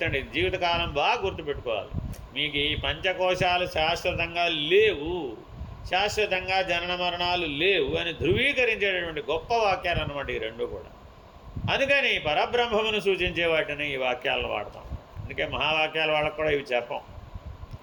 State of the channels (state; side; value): identical; both; correlation 1.00